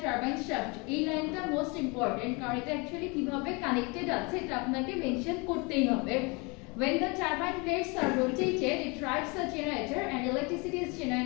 turbine shaft. এই লাইনটা মোস্ট ইম্পর্টেন্ট কারণ এটা অ্যাকচুয়ালি কিভাবে কানেক্টেড আছে এটা আপনাকে মেনশন করতেই হবে When the turbine blades are rotated, it drives the generator and electricity is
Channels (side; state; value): right; quieter; 29.1 dB